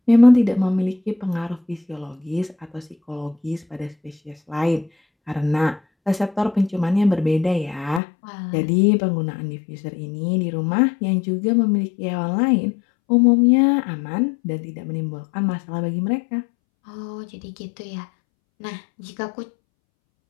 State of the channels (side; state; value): right; drops out; at 8.0 s